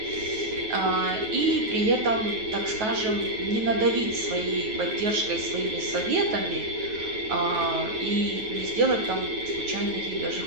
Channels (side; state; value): left; late; 9.3 ms